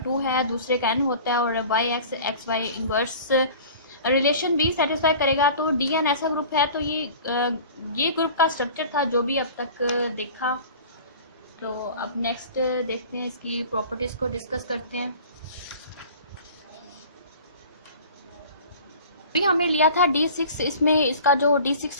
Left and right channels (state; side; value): inverted; both; correlation -0.42